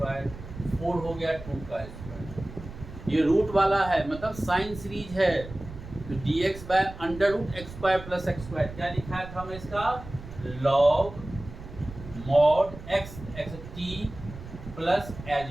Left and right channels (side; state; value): right; noise; rumble, 13 dB below the sound